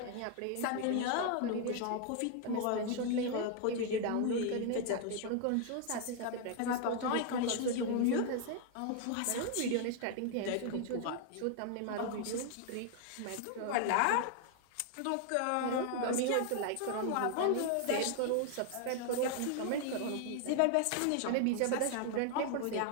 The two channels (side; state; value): both; different; correlation 0.00